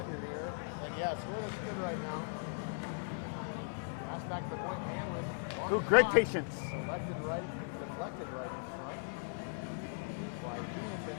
you're here. And yeah, score looks good right now. Pass back to the point. Hanlon, long Ooh, shot. great patience. Deflected right in front by Key and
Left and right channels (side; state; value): right; silent; 52 dB below the other